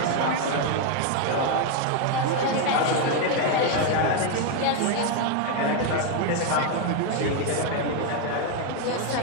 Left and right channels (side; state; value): both; different; correlation 0.01